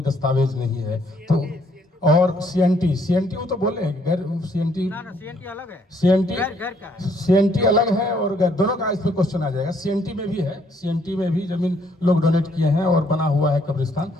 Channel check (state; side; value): normal; both; correlation 0.67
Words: दस्तावेज नहीं है। तो और सीएनटी वो तो बोले हैं गैर, सीएनटी अलग है, सीएनटी अलग है और दोनों का इस पे क्वेश्चन आ जाएगा। सीएनटी में भी है, सीएनटी में भी जमीन लोग डोनेट किए हैं और बना हुआ है कब्रिस्तान,